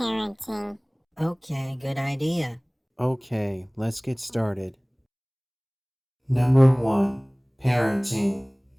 Okay, good idea. Okay, let's get started. Number 1. Parenting.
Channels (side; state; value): both; identical; correlation 1.00